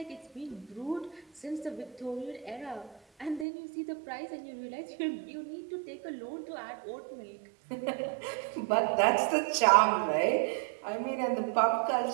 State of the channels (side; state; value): left; drops out; at 3.5 s